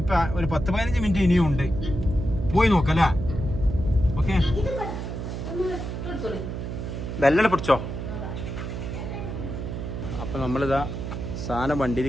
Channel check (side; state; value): right; noise; hum, 6 dB below the sound